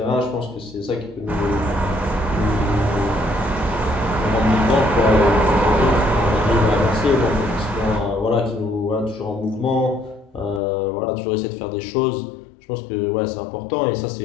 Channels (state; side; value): drops out; right; at 10.6 s